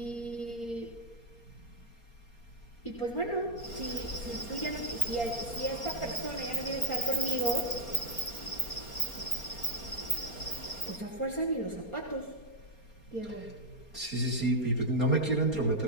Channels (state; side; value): late; right; 4.3 ms